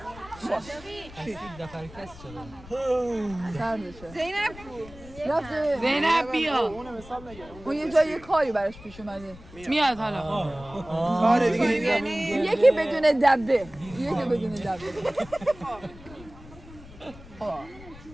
زینب زینب بیا. اون یه جای کاری براش پیش اومده. میاد حالا. آره دیگه یکی بدون دبه.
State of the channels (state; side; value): noise; left; rumble, 18 dB below the sound